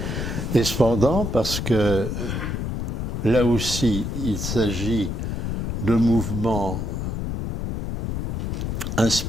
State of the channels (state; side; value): noise; left; rumble, 2 dB below the sound